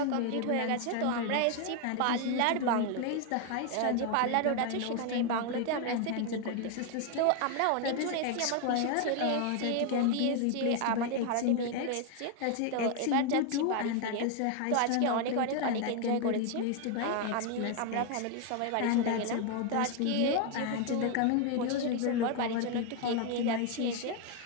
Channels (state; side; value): different; both; correlation 0.01